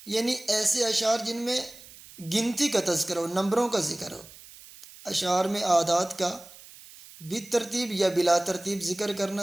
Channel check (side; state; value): right; noise; hiss, 20 dB below the sound